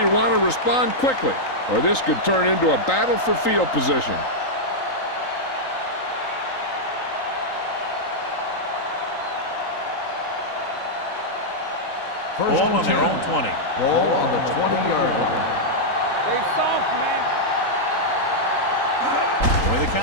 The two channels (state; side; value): late; right; 3.8 ms